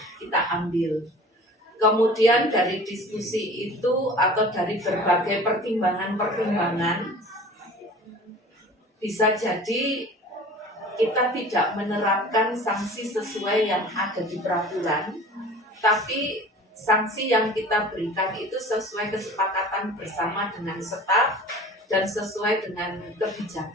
kita ambil. Kemudian dari diskusi itu atau dari berbagai pertimbangan-pertimbangan, bisa jadi kita tidak menerapkan sanksi sesuai yang ada di peraturan, tapi sanksi yang kita berikan itu sesuai kesepakatan bersama dengan staf dan sesuai dengan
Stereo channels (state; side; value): normal; both; correlation 0.43